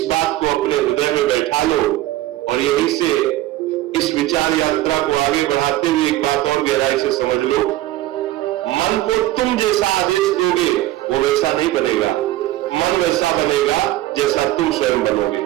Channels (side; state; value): left; quieter; 15.8 dB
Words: बात को अपने हृदय में बैठा लो। और यहीं से इस विचार यात्रा को आगे बढ़ाते हुए एक बात और गहराई से समझ लो, मन को तुम जैसा आदेश दोगे वो वैसा नहीं बनेगा। मन वैसा बनेगा जैसा तुम स्वयं बनोगे,